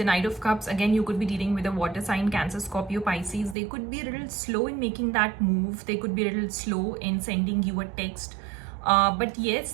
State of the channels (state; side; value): drops out; left; at 3.6 s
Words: Knight of Cups. Again, you could be dealing with a water sign, Cancer, Scorpio, Pisces. They could be a little slow in making that move. They could be a little slow in sending you a text. But